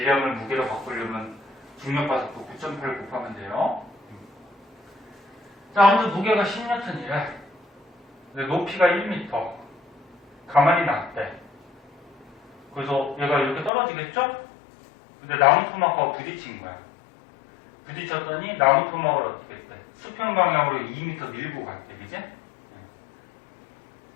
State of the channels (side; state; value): right; drops out; at 13.7 s